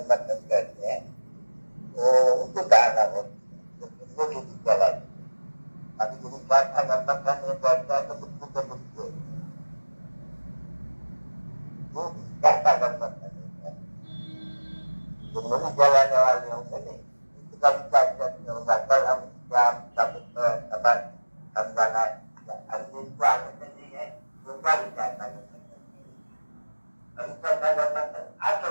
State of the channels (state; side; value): inverted; both; correlation -1.00